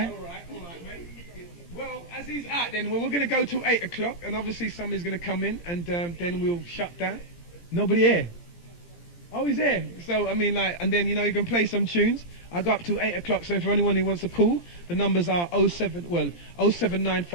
As he's out, then we're going to go till 8 o'clock, and obviously somebody's going to come in, and then we'll shut down. Nobody here. Oh, he's here. So I mean, like, and then you can play some tunes. I go up till 8 o'clock. So if anyone who wants to call, the numbers are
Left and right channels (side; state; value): right; late; 17 ms